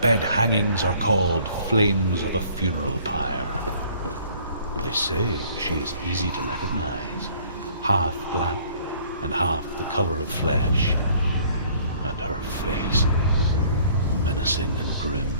hangings are called flames of a funeral pyre. They say she is easy to recognize, half black and half the color of flesh, and her face menacing and grim.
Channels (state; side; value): inverted; both; correlation -0.57